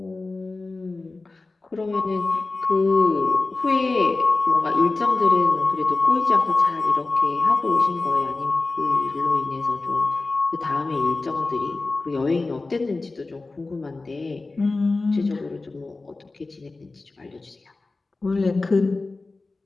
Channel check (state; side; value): quieter; right; 3.5 dB